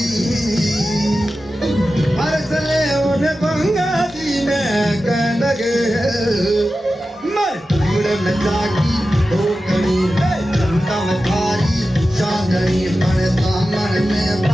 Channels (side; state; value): both; normal; correlation 0.93